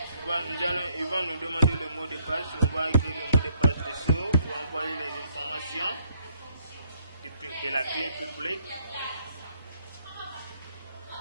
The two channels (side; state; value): both; inverted; correlation -0.69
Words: Ils vont nous demander le mot de passe. On va écrire le mot de passe dessous pour envoyer les informations de la clé publique.